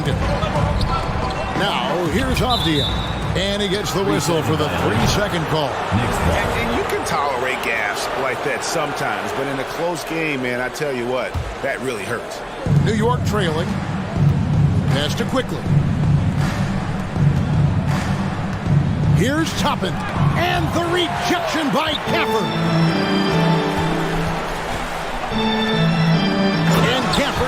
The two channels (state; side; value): identical; both; correlation 1.00